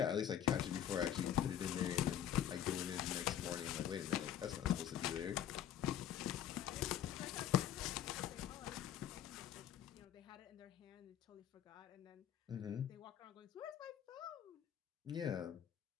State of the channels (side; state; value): right; quieter; 10.3 dB